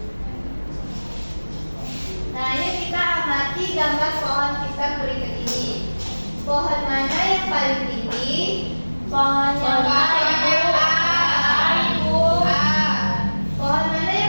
Nah, ini kita amati gambar pohon pisang berikut ini. Pohon mana yang paling tinggi? Pohon yang paling Ibu. Ibu. Pohon mana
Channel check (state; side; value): inverted; both; correlation -1.00